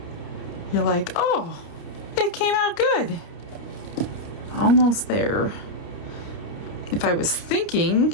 you're like, oh, it came out good. Almost there. If I was thinking,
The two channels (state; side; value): late; right; 29 ms